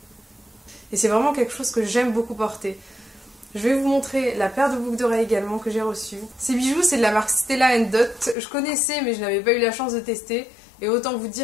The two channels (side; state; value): right; drops out; at 8.3 s